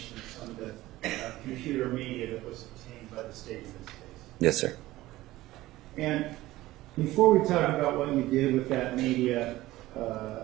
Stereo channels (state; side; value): quieter; left; 17.0 dB